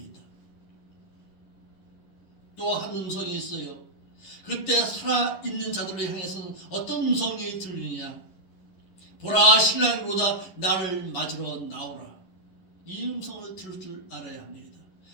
또 한 음성이 있어요. 그때 살아있는 자들을 향해서는 어떤 음성이 들리느냐? 보라 신랑이 오다 나를 맞으러 나오라. 이 음성을 들을 줄 알아야 합니다.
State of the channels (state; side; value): late; right; 11 ms